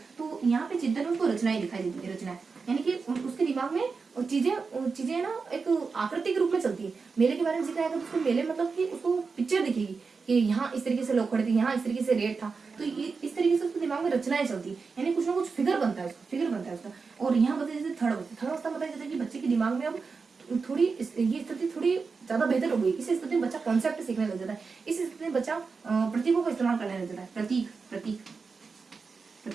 तो यहाँ पे चिंतन में उसको रचनाएं दिखाई देती है, रचनाएं, यानी कि उसके दिमाग में चीजें ना एक आकृति के रूप में चलती है। मेले के बारे में जिक्र आएगा तो उसको मेले मतलब कि उसको पिक्चर दिखेगी कि यहाँ इस तरीके से लोग खड़े थे, यहाँ इस तरीके से रेट था, तो इस तरीके से उसके दिमाग में रचनाएं चलती, यानी कुछ ना कुछ फिगर बनता है उसका। और यहाँ बताया जैसे थर्ड अवस्था बताया जाता है कि बच्चे के दिमाग में अब थोड़ी ये स्थिति थोड़ी ज्यादा बेहतर हो गई। इस स्थिति में बच्चा कॉन्सेप्ट सीखने लग जाता है। इस स्थिति में बच्चा प्रतीकों का इस्तेमाल करने लग जाता है।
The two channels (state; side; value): quieter; left; 4.8 dB